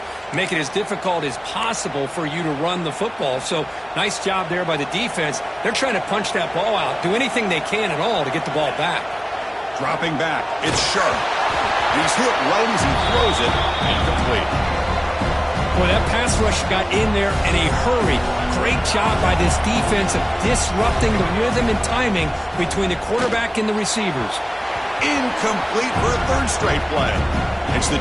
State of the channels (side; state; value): both; identical; correlation 1.00